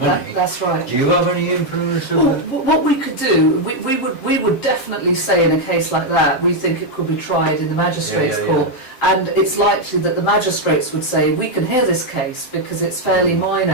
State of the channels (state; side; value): late; right; 7.7 ms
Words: money. that's right. Do you have any influence Well, over that? what we could do, we would definitely say in a case like that, we think it could be tried in the magistrates' Yeah, yeah, court, and it's likely that the magistrates would say we can hear this case because it's fairly